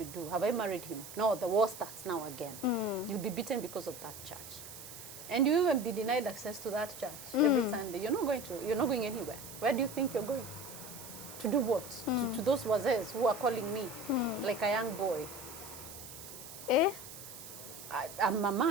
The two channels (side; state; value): right; noise; hiss, 13 dB below the sound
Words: do? Have I married him? No, the war starts now again. You'll be beaten because of that church. And you even be denied access to that church every Sunday. You're not going anywhere. Where do you think you're going? To do what? To those wazes who are calling me like a young boy. I'm a